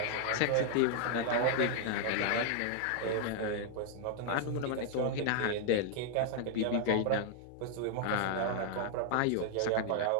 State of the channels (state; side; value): different; both; correlation 0.00